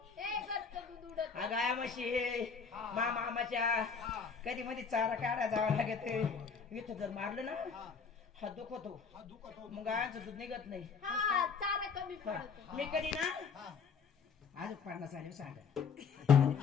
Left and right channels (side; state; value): right; quieter; 5.8 dB